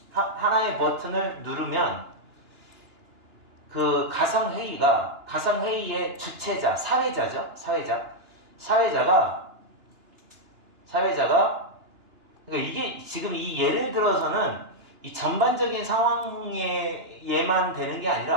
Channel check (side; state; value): left; late; 2.9 ms